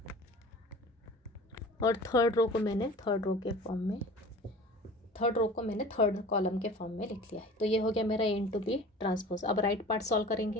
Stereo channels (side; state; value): both; normal; correlation 0.41